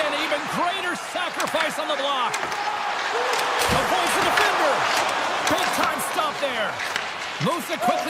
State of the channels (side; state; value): both; identical; correlation 1.00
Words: and even greater sacrifice on the block. Avoids the defender. Big time stop there. Moves it